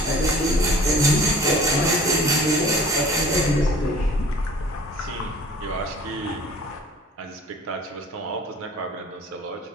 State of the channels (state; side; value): normal; both; correlation 0.48